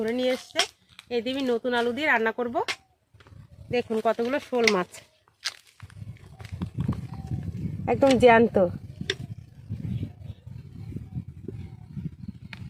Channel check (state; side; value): identical; both; correlation 1.00